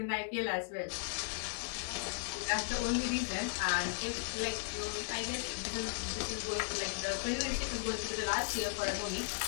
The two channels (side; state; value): right; silent; digital silence